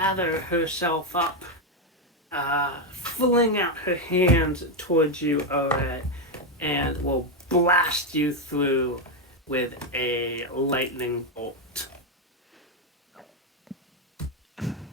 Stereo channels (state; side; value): normal; both; correlation 0.05